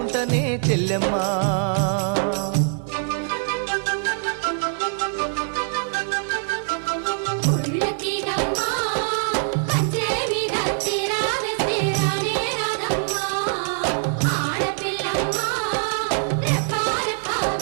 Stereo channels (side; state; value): left; silent; 63 dB below the other